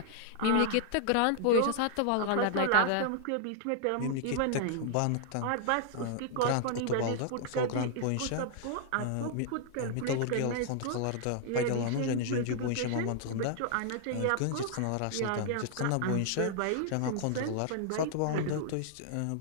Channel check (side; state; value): both; different; correlation -0.01